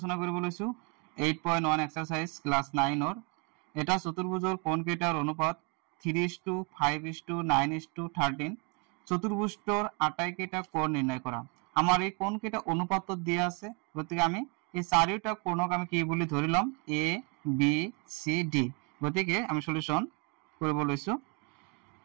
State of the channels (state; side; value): quieter; left; 33.3 dB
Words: কৰিব লৈছো 8.1 এক্সাৰসাইজ ক্লাস 9 ৰ এটা চতুৰ্ভুজৰ কোণ কেইটাৰ অনুপাত 3:5:9:13 চতুৰ্ভুজৰ আটাইকেইটা কোণ নিৰ্ণয় কৰা। আমাৰ এই কোণ কেইটা অনুপাতত দিয়া আছে, গতিকে আমি এই চাৰিটা কোণক আমি কি বুলি ধৰি লম A B C D। গতিকে আমি সলিউশন কৰিব লৈছো।